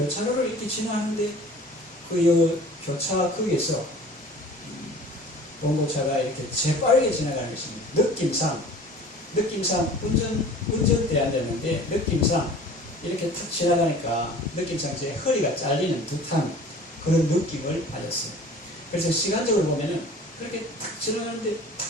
이렇게 지나는데 그 교차 거기에서 봉고차가 이렇게 재빠르게 지나가는 것입니다. 느낌상 운전대 앉았는데 느낌상 이렇게 탁 지나가니까 느낌상 제 허리가 잘리는 듯한 그런 느낌을 받았어요. 그래서 시간적으로 보면은 그렇게 탁 지나가는데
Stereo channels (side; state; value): both; normal; correlation 0.45